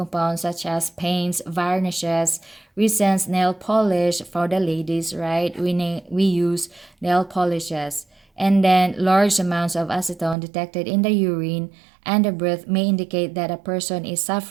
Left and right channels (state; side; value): drops out; left; at 10.4 s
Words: such as paints, varnishes, resins, nail polish for the ladies, right? We use nail polishes. And then large amounts of acetone detected in the urine and the breath may indicate that a person is